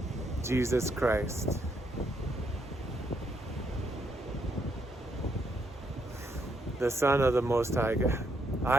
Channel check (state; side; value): normal; both; correlation 0.75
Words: Jesus Christ. The Son of the Most High God.